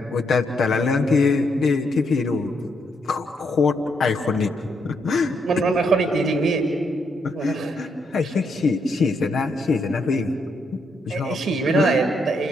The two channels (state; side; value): normal; both; correlation 0.77